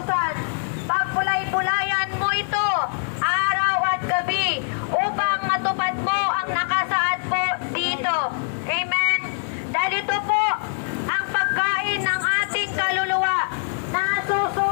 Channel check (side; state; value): right; silent; 63 dB below the other